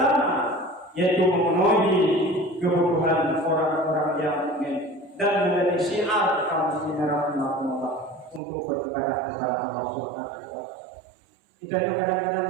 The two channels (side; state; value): left; drops out; at 8.4 s